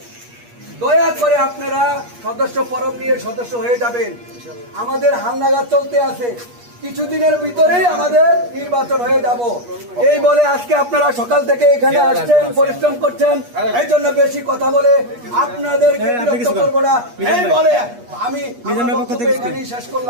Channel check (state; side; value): late; left; 8.4 ms